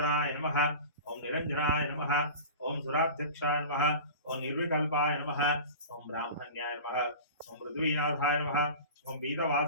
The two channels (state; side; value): inverted; both; correlation -0.35